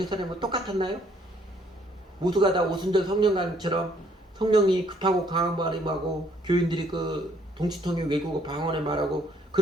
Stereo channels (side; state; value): both; normal; correlation 0.65